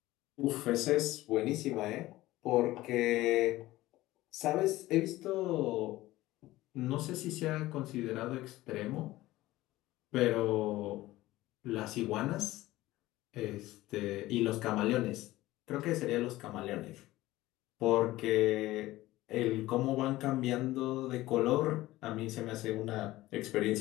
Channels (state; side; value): quieter; right; 17.2 dB